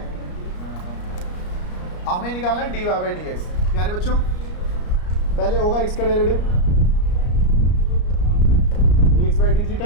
हमें निकालना है dy बाई डी एक्स। प्यारे बच्चों, पहले होगा x का derivative dx by D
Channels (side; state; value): right; late; 34 ms